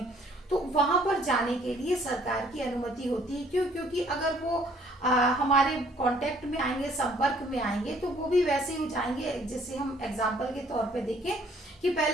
तो वहां पर जाने के लिए सरकार की अनुमति होती है। क्यों? क्योंकि अगर वो हमारे कांटेक्ट में आएंगे, संपर्क में आएंगे, तो वो भी वैसे ही जाएंगे। जैसे हम एग्जांपल के तौर पे देखें कि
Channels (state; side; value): normal; both; correlation 0.60